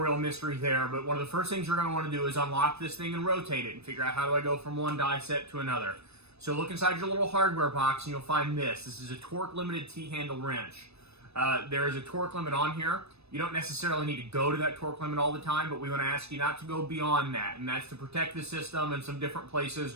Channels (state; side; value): late; left; 0.79 ms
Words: mystery there, but one of the first things you're going to want to do is unlock this thing and rotate it and figure out how do I go from one die set to another. So look inside your little hardware box and you'll find this. This is a torque limited T-handle wrench. There is a torque limit on here. You don't necessarily need to go to that torque limit all the time, but we want to ask you not to go beyond that, and that's to protect the system in some different places